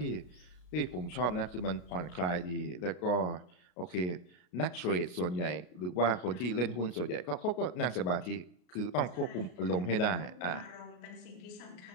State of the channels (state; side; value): late; right; 33 ms